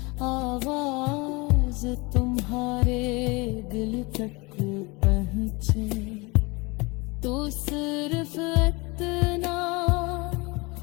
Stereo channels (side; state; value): right; quieter; 26.0 dB